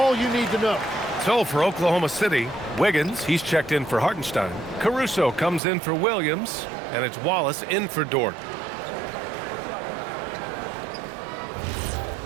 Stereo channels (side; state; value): left; drops out; at 5.6 s